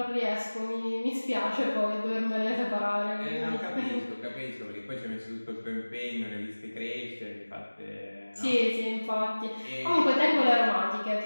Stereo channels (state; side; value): inverted; both; correlation -1.00